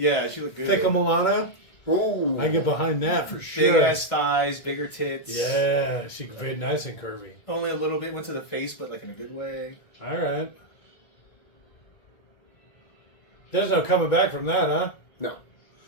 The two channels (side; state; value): right; late; 1.7 ms